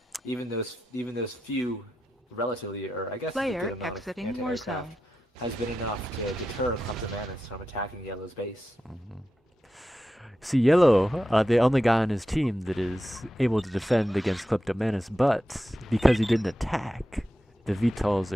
Even those few, relatively, or I guess a Player good amount of exiting anti-aircraft Warzone. has been enough to deter Kleptomanus from attacking Yellow's base. See, Yellow, the only guy on his team that is able to defend against Kleptomanus, but because he didn't attack, the VTOLs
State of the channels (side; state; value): both; normal; correlation 0.90